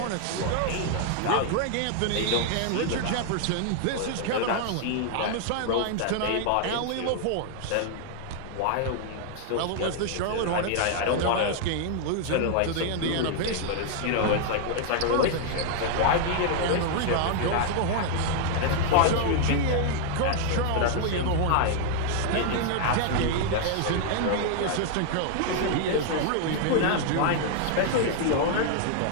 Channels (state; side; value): different; both; correlation 0.00